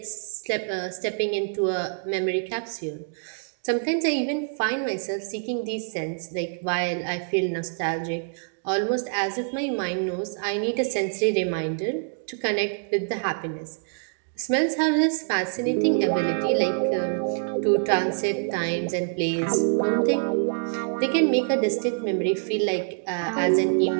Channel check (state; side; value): silent; left; digital silence